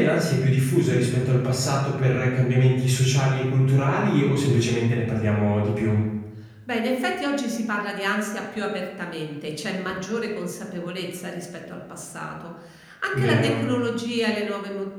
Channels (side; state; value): both; identical; correlation 1.00